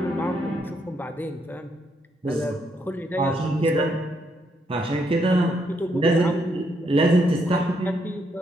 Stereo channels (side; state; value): both; normal; correlation 0.76